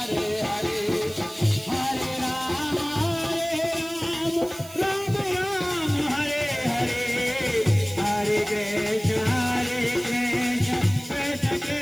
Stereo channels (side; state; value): right; noise; hiss, 18 dB below the sound